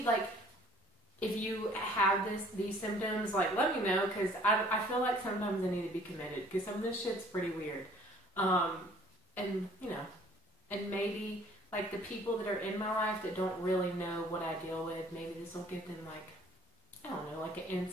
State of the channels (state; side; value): normal; both; correlation 0.55